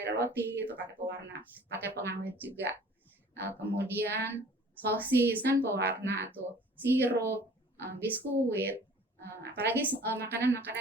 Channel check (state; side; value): normal; both; correlation 0.49